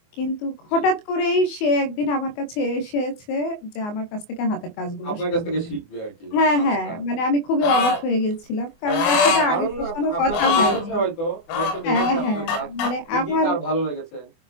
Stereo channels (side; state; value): right; late; 24 ms